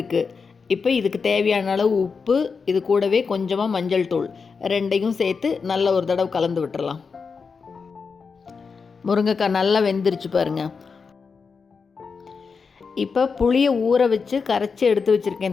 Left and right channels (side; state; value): right; quieter; 5.2 dB